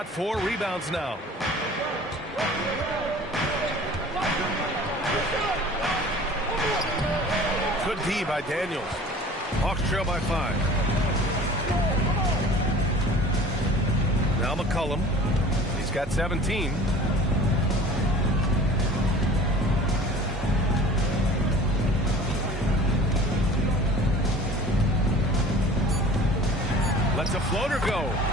4 rebounds now. Good D by Daniels. Hawks trail by 5. Now McCollum. He's got 17. Lets a floater go.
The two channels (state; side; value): normal; both; correlation 0.44